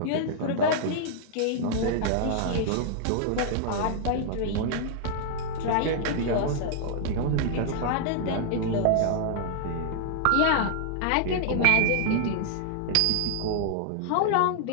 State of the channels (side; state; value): both; different; correlation -0.01